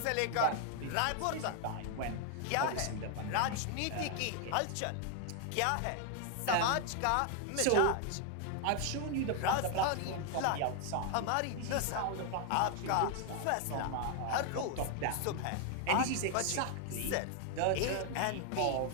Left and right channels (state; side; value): different; both; correlation 0.00